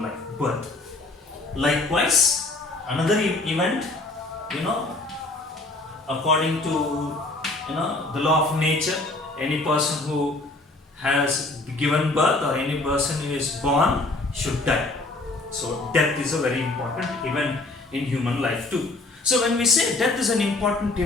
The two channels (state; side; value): quieter; right; 3.0 dB